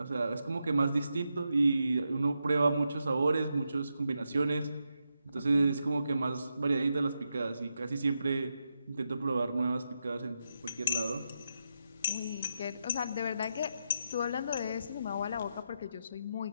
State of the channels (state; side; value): inverted; both; correlation -0.85